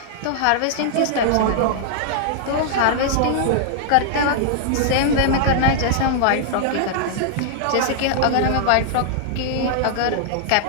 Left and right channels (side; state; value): both; different; correlation -0.01